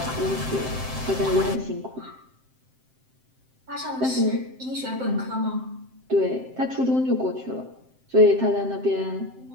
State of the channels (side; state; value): left; late; 7.7 ms